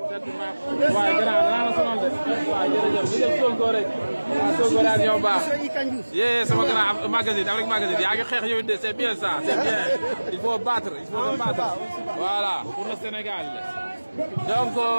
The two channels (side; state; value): both; inverted; correlation -1.00